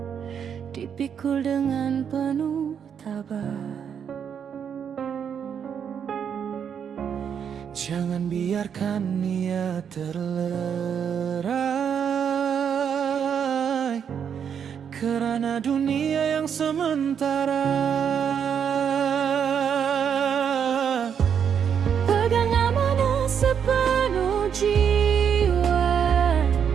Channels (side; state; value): left; quieter; 7.8 dB